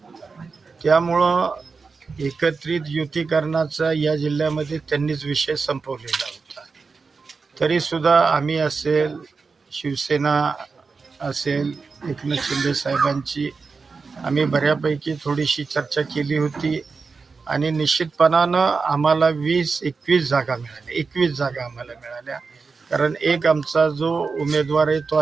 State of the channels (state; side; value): quieter; left; 4.6 dB